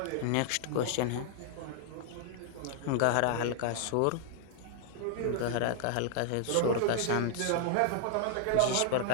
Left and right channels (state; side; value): different; both; correlation 0.00